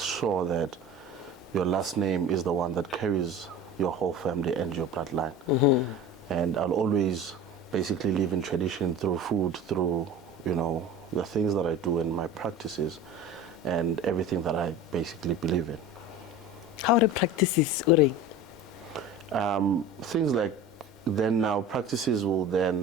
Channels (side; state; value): both; normal; correlation 0.36